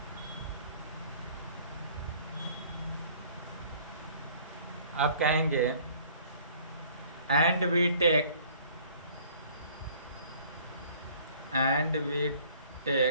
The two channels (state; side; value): inverted; both; correlation -0.54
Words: अब कहेंगे एंड वी टेक